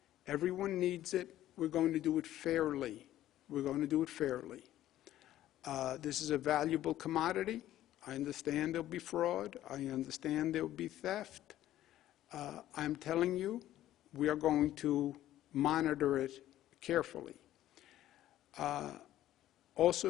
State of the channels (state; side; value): quieter; right; 13.4 dB